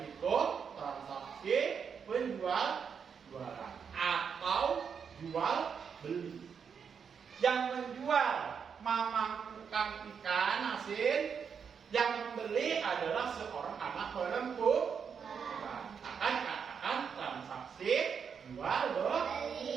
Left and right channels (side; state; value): left; quieter; 6.7 dB